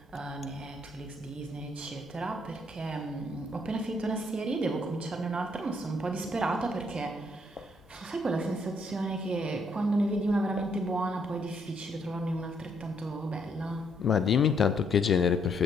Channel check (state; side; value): normal; both; correlation 0.71